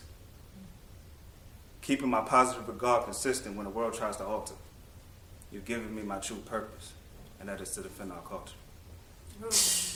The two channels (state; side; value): identical; both; correlation 1.00